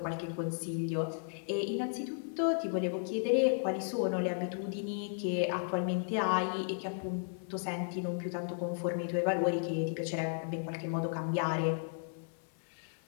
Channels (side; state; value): right; silent; 55 dB below the other